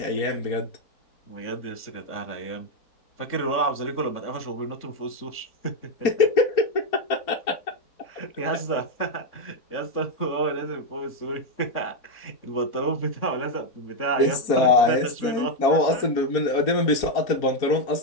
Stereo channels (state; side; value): late; right; 4.3 ms